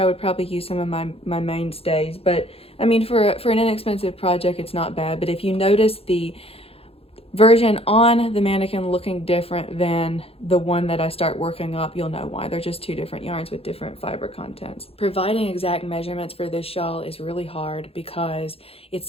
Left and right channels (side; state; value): right; late; 0.28 ms